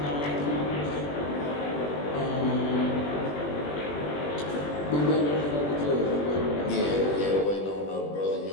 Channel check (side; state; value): right; late; 20 ms